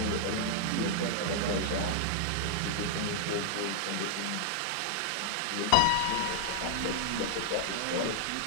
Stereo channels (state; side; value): different; both; correlation -0.01